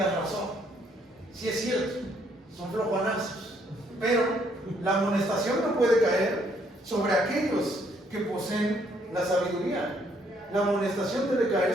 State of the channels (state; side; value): normal; both; correlation 0.68